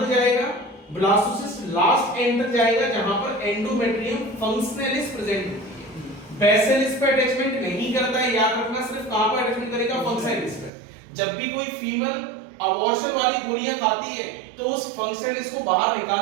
जाएगा? ब्लास्टोसिस्ट लास्ट एंड तक जाएगा जहां पर एंडोमेट्रियम फंक्शनलिस प्रेजेंट होती है। बेसिलिस पे अटैचमेंट नहीं करता है, याद रखना, सिर्फ कहां पर अटैचमेंट करेगा? फंक्शनलिस पे। जब भी कोई फीमेल अबॉर्शन वाली गोलियां खाती है तो उस फंक्शनलिस को बाहर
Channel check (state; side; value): drops out; left; at 10.7 s